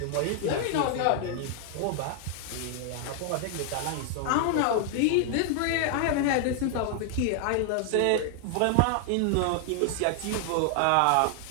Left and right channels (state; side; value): different; both; correlation 0.00